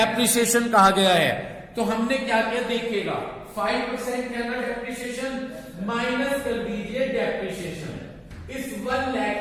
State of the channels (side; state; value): both; identical; correlation 1.00